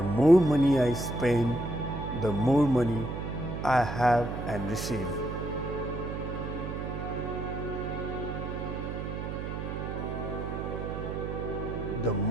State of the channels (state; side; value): noise; right; hum, 5 dB below the sound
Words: more money I spend, the more money I have and receive. The